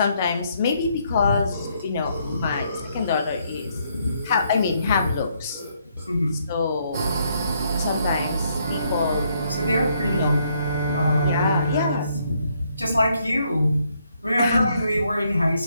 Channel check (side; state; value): both; inverted; correlation -0.72